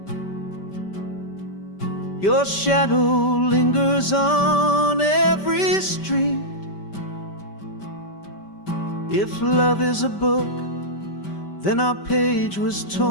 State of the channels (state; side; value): late; right; 5.1 ms